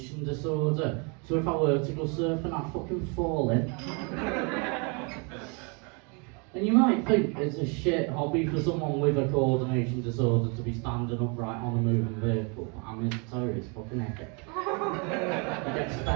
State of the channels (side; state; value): left; quieter; 33.6 dB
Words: disorder. So if I were to go surfing, I'd fucking fall in. And you might think it's a shit hobby for someone with a coordination disorder to be standing upright on a moving vehicle, but I mean, I tell you, it's fucking epic. You get to